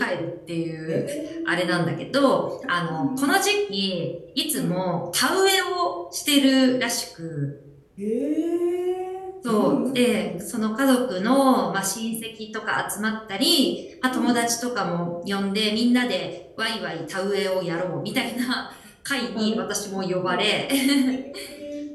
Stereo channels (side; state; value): both; identical; correlation 1.00